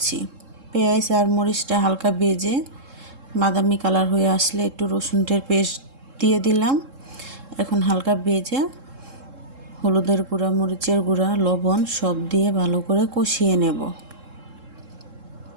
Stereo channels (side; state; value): left; late; 3.7 ms